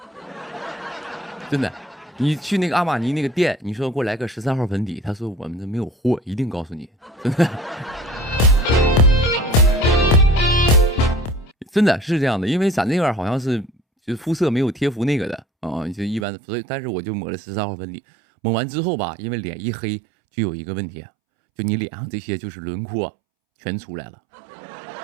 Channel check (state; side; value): drops out; left; at 16.2 s